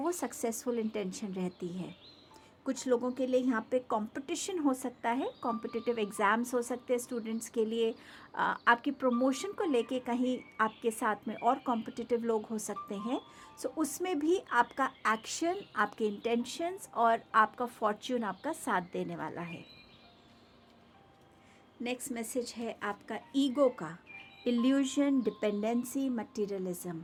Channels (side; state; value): both; identical; correlation 1.00